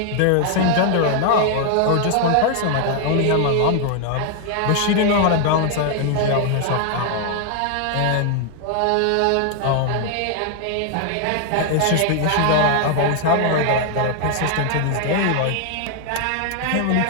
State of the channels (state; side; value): different; both; correlation 0.00